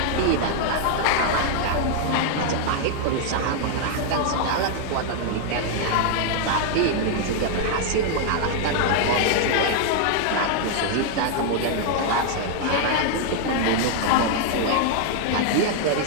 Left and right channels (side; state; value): both; different; correlation 0.00